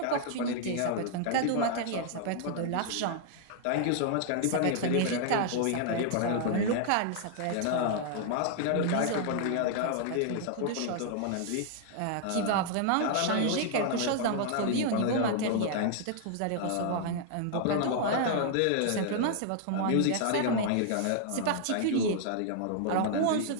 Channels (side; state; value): both; different; correlation -0.01